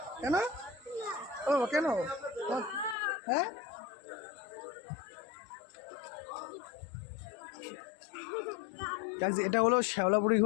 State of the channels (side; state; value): right; drops out; at 3.0 s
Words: কেন ও কেন? হ্যাঁ এটা হলো শ্যাওলাপুরি